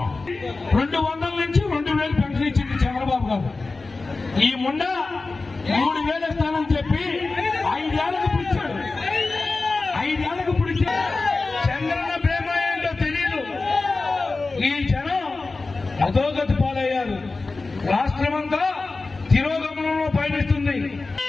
200 నుంచి 2,000 పెన్షన్ ఇచ్చింది చంద్రబాబు గారు. ఈ ముండ 3,000 ఇస్తానని చెప్పి 5 ఏళ్లకు పిలిచాడు. 5 ఏళ్లకు పిలిచాడు. చంద్రన్న ప్రేమ ఏంటో తెలియదు. ఈ జనం అధోగతి పాలయ్యారు. రాష్ట్రమంతా తిరోగమనంలో పయనిస్తుంది.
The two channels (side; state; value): right; quieter; 3.7 dB